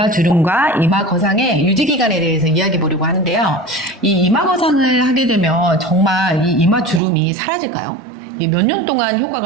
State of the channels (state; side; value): drops out; left; at 7.0 s